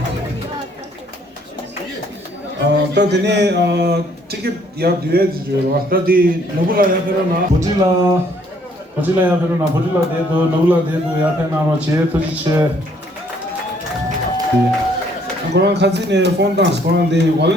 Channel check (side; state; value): both; normal; correlation 0.64